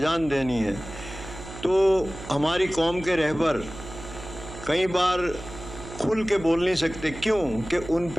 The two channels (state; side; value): noise; right; hum, 13 dB below the sound